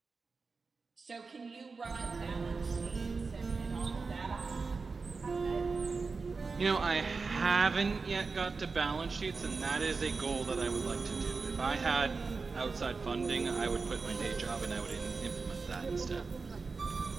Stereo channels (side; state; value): left; quieter; 4.4 dB